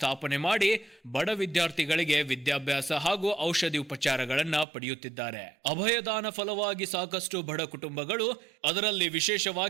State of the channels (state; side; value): drops out; left; at 4.7 s